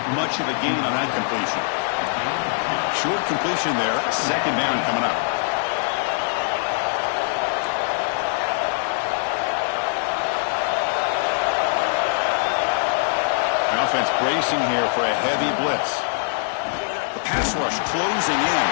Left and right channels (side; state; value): right; silent; digital silence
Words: much of a gain on that completion. Short completion there, 2nd down coming up. The offense bracing here for a heavy blitz. The pass rush closing in.